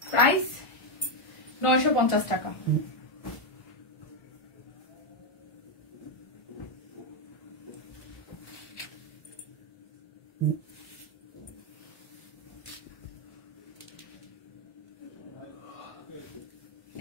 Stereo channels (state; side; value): late; right; 1.4 ms